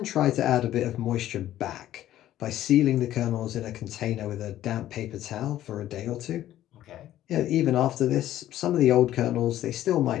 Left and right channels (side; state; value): right; quieter; 13.1 dB